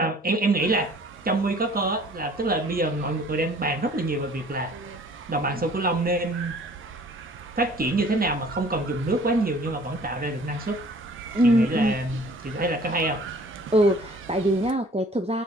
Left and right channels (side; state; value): both; normal; correlation 0.52